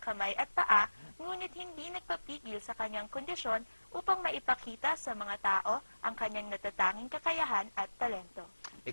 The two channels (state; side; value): inverted; both; correlation -1.00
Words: kamay at paa, ngunit hindi nagpapigil sa kanyang kondisyon upang maipakita sa mga tao ang kanyang natatanging kakayahan at talento.